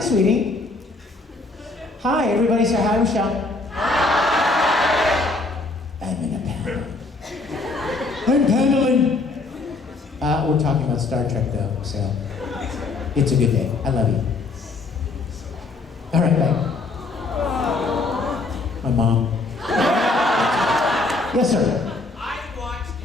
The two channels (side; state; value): right; quieter; 3.5 dB